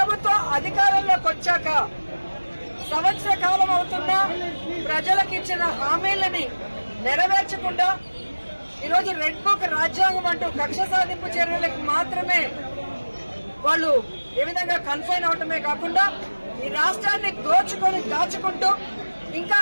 ప్రభుత్వం అధికారంలోకి వచ్చాక సంవత్సర కాలం అవుతున్నా ప్రజలకు ఇచ్చిన హామీలని నెరవేర్చకుండా ఈరోజు రెడ్ బుక్ రాజ్యాంగం అంటూ కక్ష సాధింపు చర్యలకు మాత్రమే వాళ్ళు ఏ విధంగా కన్ఫైన్ అవటమే కాకుండా ఈ రాష్ట్రాన్ని దోచుకొని దాచుకుంటూ ఇంకా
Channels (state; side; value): inverted; both; correlation -1.00